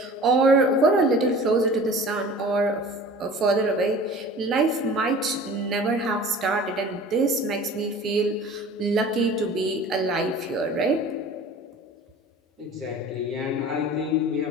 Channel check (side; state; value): both; normal; correlation 0.42